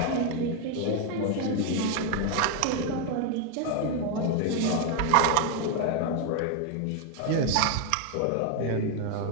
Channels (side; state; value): both; different; correlation 0.01